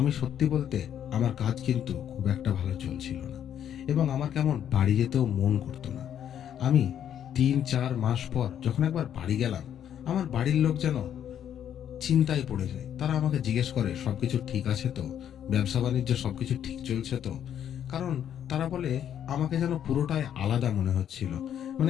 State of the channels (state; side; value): quieter; right; 9.7 dB